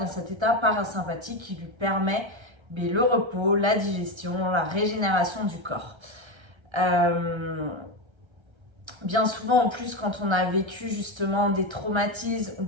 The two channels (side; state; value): left; late; 1.3 ms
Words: cet état parasympathique qui lui permet le repos, la digestion, la régénération du corps. Bien souvent, en plus, quand on a vécu justement des traumatismes ou